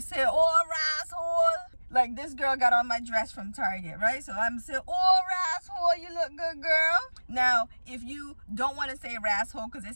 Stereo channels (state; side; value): inverted; both; correlation -1.00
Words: say, oh, rasshole. Like this girl got on my dress from Target, right? So I'm saying, oh, rasshole, you look good, girl. Now, if you don't want to say rasshole because it